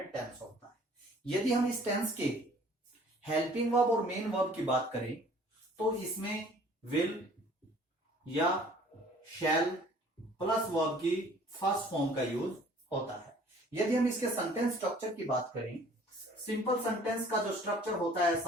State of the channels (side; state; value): both; normal; correlation 0.53